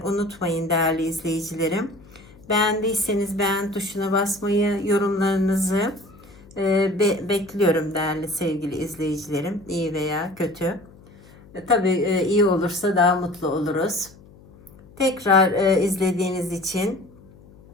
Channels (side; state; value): left; noise; hum, 24 dB below the sound